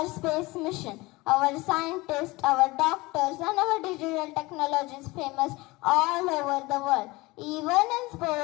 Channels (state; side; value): quieter; right; 22.0 dB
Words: space mission. Our scientists, our doctors and our digital technology is famous all over the world. Even in